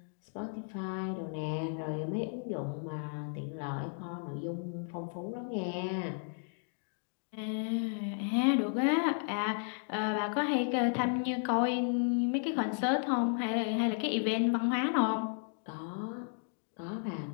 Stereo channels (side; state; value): right; silent; 55 dB below the other